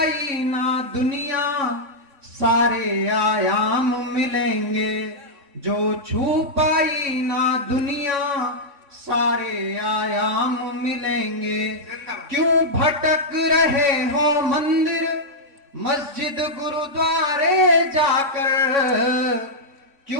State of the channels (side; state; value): left; late; 3.6 ms